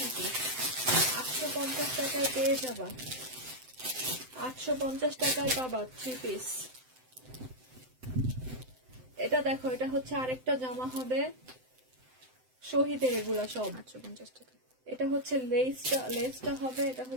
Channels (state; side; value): late; left; 7.8 ms